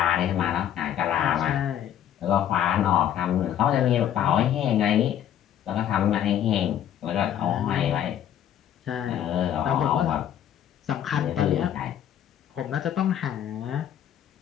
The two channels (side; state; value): right; quieter; 10.3 dB